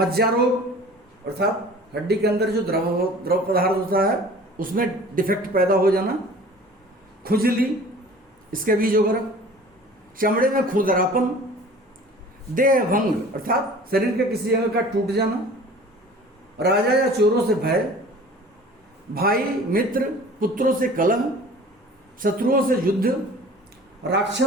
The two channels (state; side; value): normal; both; correlation 0.45